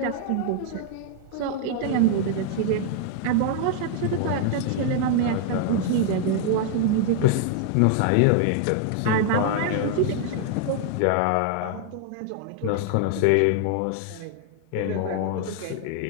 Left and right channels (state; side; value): different; both; correlation 0.00